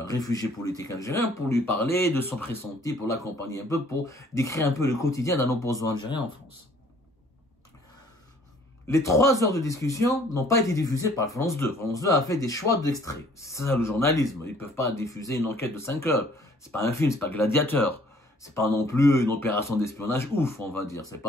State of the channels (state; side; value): normal; both; correlation 0.58